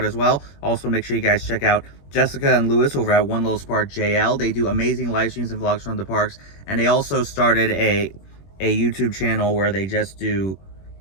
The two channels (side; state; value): right; late; 21 ms